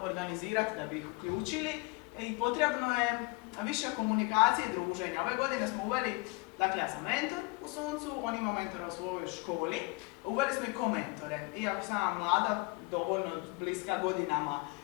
da bi ih uključili i potrebno je više komunikacije i druženja. Ove godine smo uveli, dakle ja sam mentor u Suncu, on ima mentora u svojoj školi, uveli smo i komentore. Iako sam ja mlada, dovoljno bliska godinama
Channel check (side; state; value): right; quieter; 27.2 dB